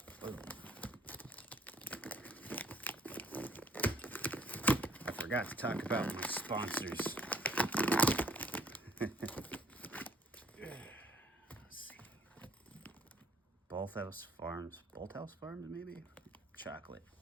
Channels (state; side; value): normal; both; correlation 0.59